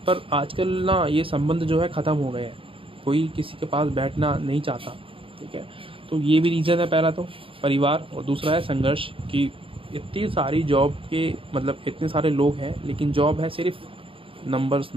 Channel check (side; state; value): left; late; 0.26 ms